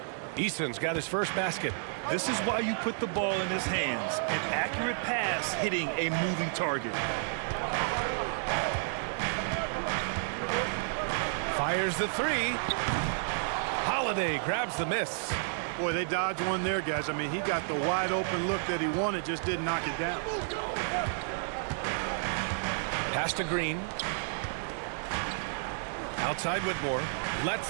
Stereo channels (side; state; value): left; silent; digital silence